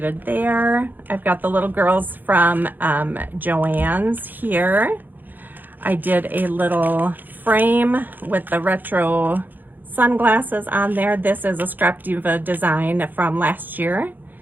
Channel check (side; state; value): left; late; 0.088 ms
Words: there. I've got the little girls from Joann's here. I did a little frame with the retro sunglasses on there. This is a Scrap Diva design from last year.